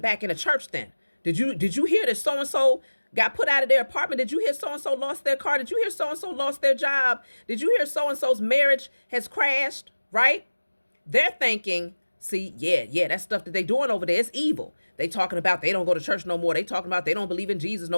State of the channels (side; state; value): both; inverted; correlation -1.00